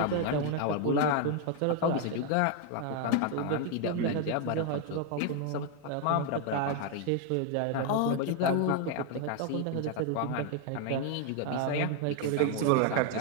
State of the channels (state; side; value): different; both; correlation 0.01